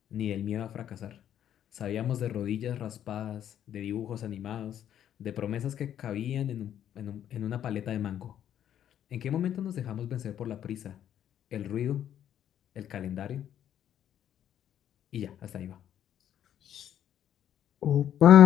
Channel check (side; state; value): right; quieter; 10.4 dB